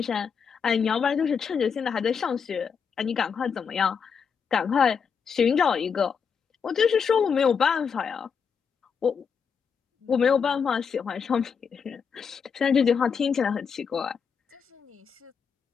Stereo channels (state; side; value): quieter; right; 6.4 dB